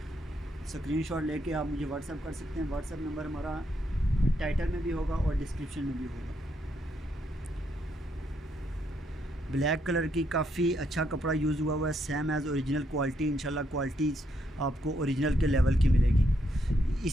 स्क्रीनशॉट लेके आप मुझे व्हाट्सअप कर सकते हैं। व्हाट्सअप नंबर हमारा टाइटल में भी होगा और डिस्क्रिप्शन में भी होगा। ब्लैक कलर की काफ़ी अच्छा कपड़ा यूज़ हुआ है, सेम एज़ ओरिजिनल क्वालिटी। इंशाल्लाह क्वालिटी आपको ओरिजिनल के लेवल की मिलेगी।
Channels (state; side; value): normal; both; correlation 0.76